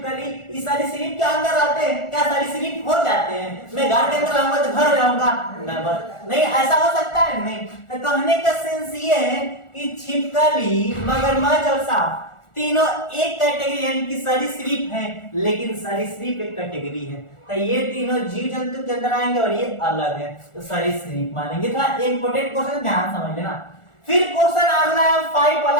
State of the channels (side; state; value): right; late; 1.4 ms